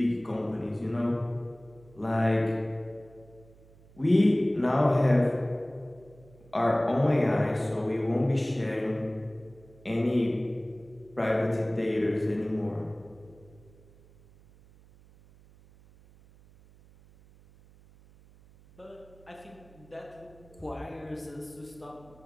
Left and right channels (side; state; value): right; noise; hum, 25 dB below the sound